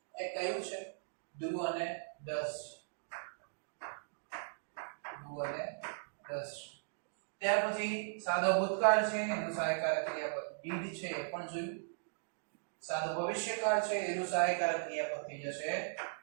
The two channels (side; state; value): left; silent; digital silence